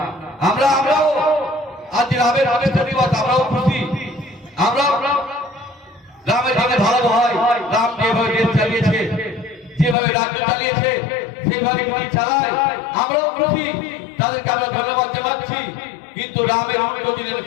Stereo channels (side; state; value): right; drops out; at 10.0 s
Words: আমরাও আজ রামের প্রতিষ্ঠা দিবস, আমরাও খুশি, আমরা রামের জন্য ভালো হয়। রাম যেভাবে দেশ চালিয়েছে, যেভাবে রাজ্য চালিয়েছে, সেইভাবে যদি চালায় আমরাও খুশি, তাদেরকে আমরা ধন্যবাদ জানাচ্ছি। কিন্তু রামের উল্টো